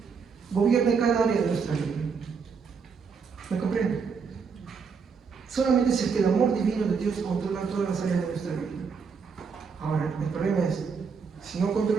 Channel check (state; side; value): quieter; left; 5.7 dB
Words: gobierne cada área de nuestra vida. ¿Me comprende? Solamente si es que el amor divino de Dios controla todas las áreas de nuestra vida. Ahora, el problema es, si no